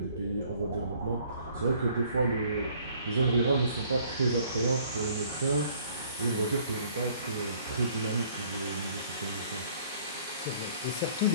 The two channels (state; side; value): inverted; both; correlation -0.58